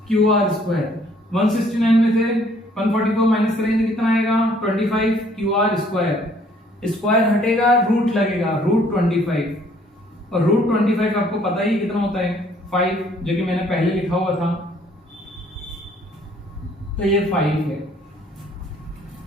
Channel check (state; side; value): normal; both; correlation 0.61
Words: QR स्क्वायर। 169 में से 144 माइनस करेंगे कितना आएगा? 25 QR स्क्वायर। स्क्वायर हटेगा, रूट लगेगा, रूट 25। और रूट 25 आपको पता ही कितना होता है? 5, जो कि मैंने पहले लिखा हुआ था। तो ये 5 है।